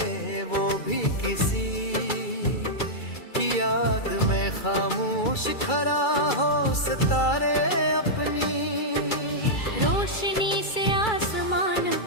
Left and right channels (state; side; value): late; right; 2.3 ms